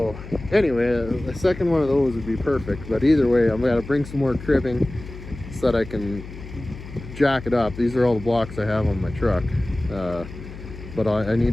anyway, a second one of those would be perfect. But either way, I'm gonna bring some more cribbing so that I can jack it up. These are all the blocks I have on my truck, but I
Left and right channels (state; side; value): noise; left; hum, 13 dB below the sound